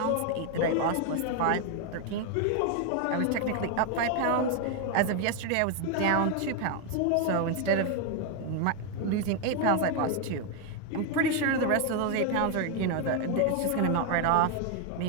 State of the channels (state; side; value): different; both; correlation 0.01